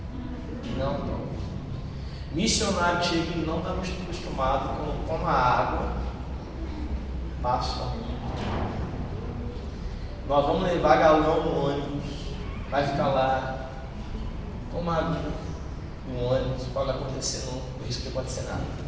Não toma. Missionário que chega aqui não está acostumado quando toma água, passa. Nós vamos levar galão no ônibus, vai ficar lá, toma água no ônibus, pode acontecer não, por isso que pode ser nada.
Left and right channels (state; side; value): identical; both; correlation 1.00